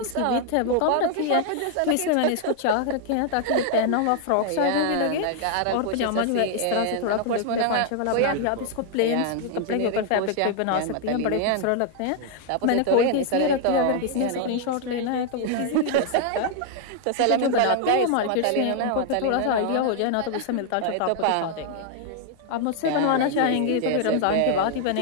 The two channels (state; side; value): different; both; correlation 0.00